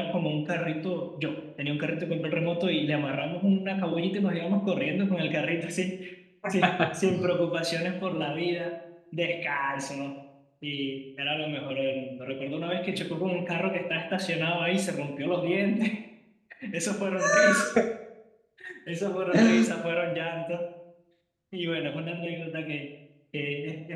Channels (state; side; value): identical; both; correlation 1.00